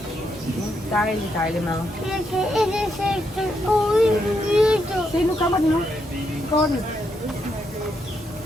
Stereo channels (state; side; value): normal; both; correlation 0.79